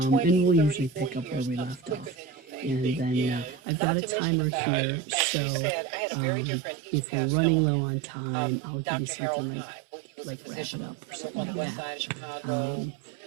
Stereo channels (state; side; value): drops out; left; at 3.6 s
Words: we'll usually pick up where we left off. And then I've got a timer here, so if we're running low on time, I'll give you something like wrap it up or something like that.